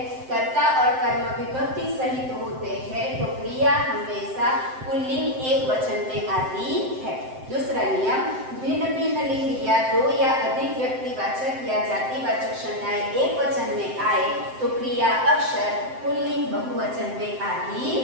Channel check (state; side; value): late; left; 7.7 ms